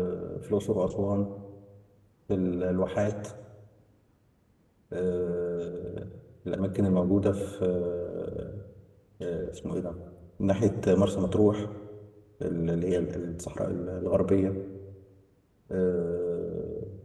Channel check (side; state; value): both; identical; correlation 1.00